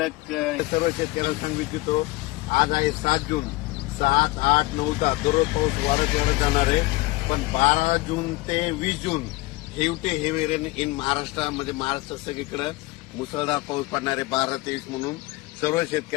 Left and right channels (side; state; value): right; quieter; 21.2 dB